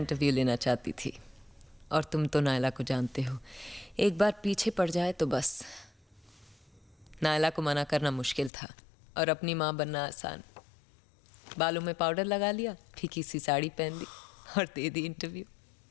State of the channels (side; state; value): right; drops out; at 8.5 s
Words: लेना चाहती थी, और तुम तो नायला को जानते हो, एक बार पीछे पड़ जाए तो बस। नायला को मना करना मुश्किल था और अपनी माँ बनना आसान। बालों में पाउडर लगा लिया, फीकी सी साड़ी पहन ली और दे दी इंटरव्यू।